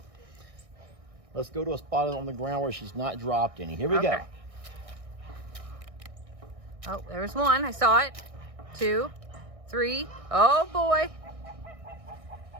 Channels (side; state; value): left; late; 1.6 ms